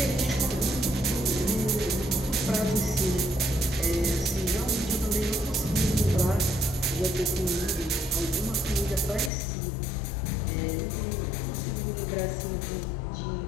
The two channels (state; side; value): drops out; right; at 9.3 s